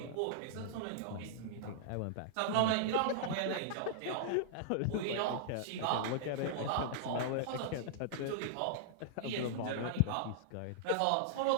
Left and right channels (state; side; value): different; both; correlation -0.02